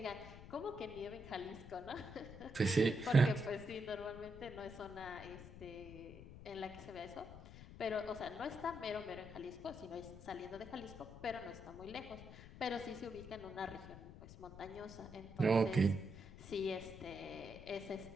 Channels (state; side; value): noise; left; rumble, 14 dB below the sound